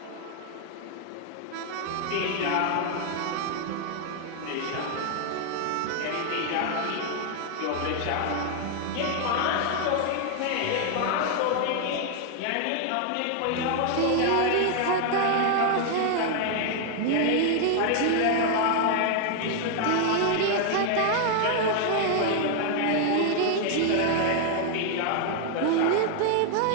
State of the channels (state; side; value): different; both; correlation 0.00